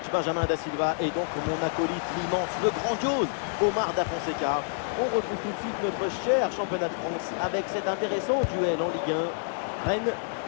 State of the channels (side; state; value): right; silent; 59 dB below the other